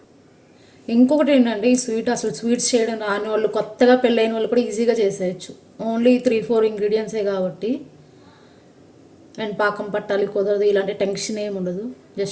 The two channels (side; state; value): both; identical; correlation 1.00